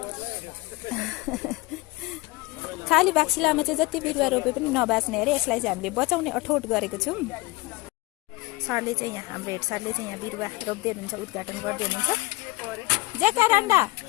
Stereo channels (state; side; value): quieter; right; 22.3 dB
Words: खाली बाक्सिलामा चाहिँ जति बिरुवा रोपे पनि नबाच्ने अरे, यसलाई चाहिँ हामीले बचाउने अठोट गरेको छौँ। सरले चाहिँ यहाँ हाम्रो हेड सरले चाहिँ यहाँ बिरुवा रोप्दै हुनुहुन्छ, उद्घाटन गर्दै हुनुहुन्छ। जेका रान्डा